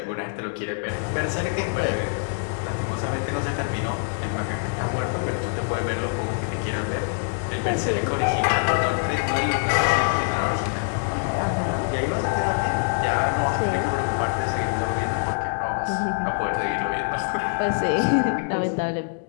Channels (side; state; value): right; silent; 62 dB below the other